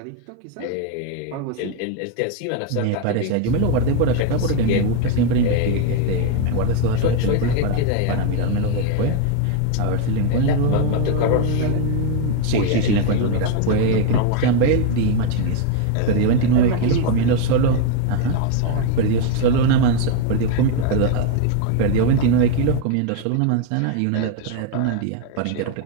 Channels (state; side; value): different; both; correlation 0.01